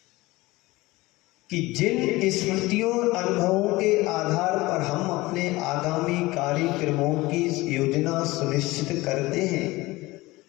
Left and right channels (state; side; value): quieter; right; 20.3 dB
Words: कि जिन स्मृतियों और अनुभवों के आधार पर हम अपने आगामी कार्यक्रमों की योजना सुनिश्चित करते हैं,